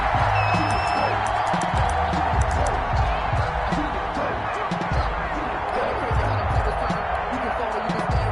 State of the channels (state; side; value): identical; both; correlation 1.00